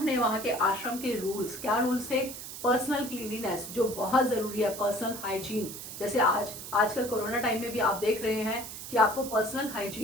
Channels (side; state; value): right; noise; hiss, 10 dB below the sound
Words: वहाँ के आश्रम के रूल्स, क्या रूल्स थे? पर्सनल क्लीनिनेस जो बहुत ज़रूरी है, पर्सनल हाइजीन, जैसे आजकल कोरोना टाइम में भी आप देख रहे हैं कि आपको पर्सनल